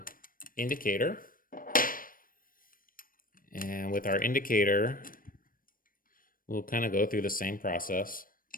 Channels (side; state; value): right; late; 0.41 ms